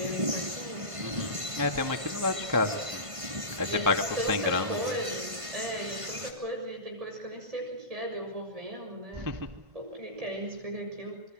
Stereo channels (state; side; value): late; left; 1.5 ms